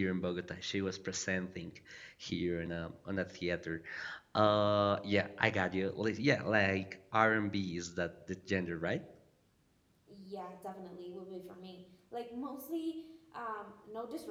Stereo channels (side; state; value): both; identical; correlation 1.00